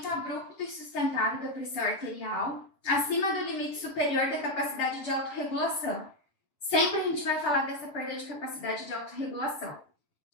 abrupto e sustentado da pressão arterial, acima do limite superior da capacidade de autorregulação. Sempre a gente vai falar dessa perda de capacidade de autorregulação.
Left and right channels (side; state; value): right; late; 7.0 ms